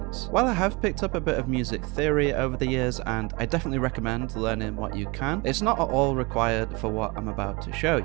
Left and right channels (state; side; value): quieter; left; 26.2 dB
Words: While I have picked up a bit of music theory over the years, and I definitely recommend learning what you can, it's not at all required for what I'm about to show